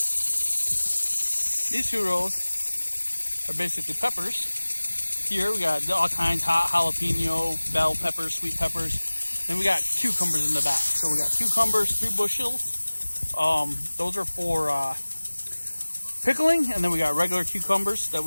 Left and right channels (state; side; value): inverted; both; correlation -1.00